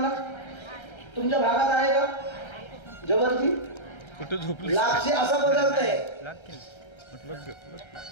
तुमच्या भागात आहे का? जवळची लापसी असा पदार्थ आहे।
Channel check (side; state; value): right; late; 1.3 ms